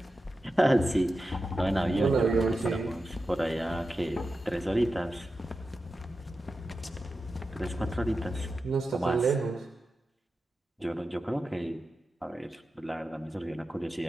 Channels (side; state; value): both; normal; correlation 0.91